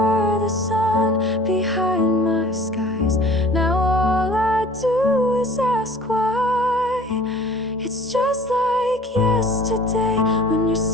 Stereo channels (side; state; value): both; normal; correlation 0.46